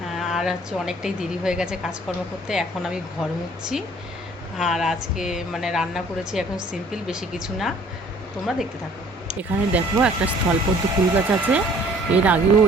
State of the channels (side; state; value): both; normal; correlation 0.55